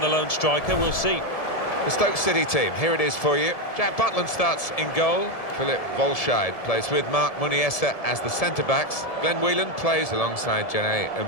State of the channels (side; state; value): right; late; 1.7 ms